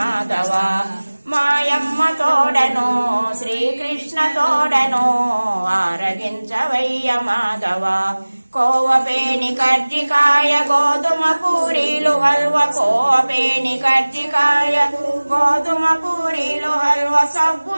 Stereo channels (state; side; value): inverted; both; correlation -1.00